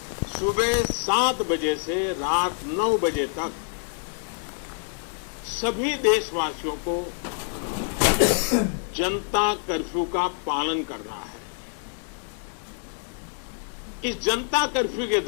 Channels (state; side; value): silent; right; 61 dB below the other